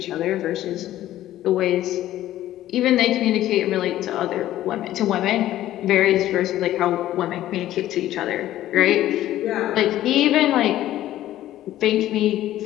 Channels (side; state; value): right; quieter; 13.7 dB